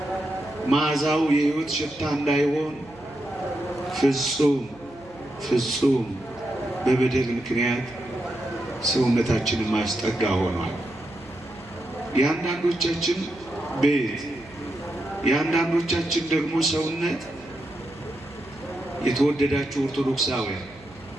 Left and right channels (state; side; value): noise; right; hum, 23 dB below the sound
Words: መዓዛው የሕይወት ሽታ እንዳይሆን ፍጹም በበደል ምክንያት ሰውነታችንን ማስጠጋ ሆኗል። የአንዳንዶቻችን ቤት የአንዳንዶቻችን ደግሞ ሰውነት የተወደዳችሁ ኦርቶዶክሳውያን